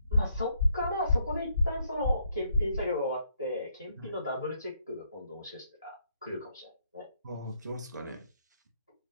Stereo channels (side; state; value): both; inverted; correlation -0.73